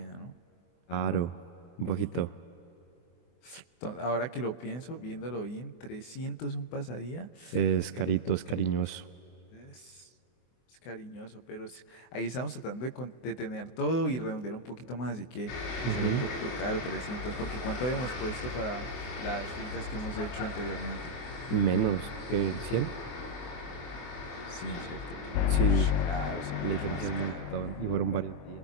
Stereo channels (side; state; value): right; late; 24 ms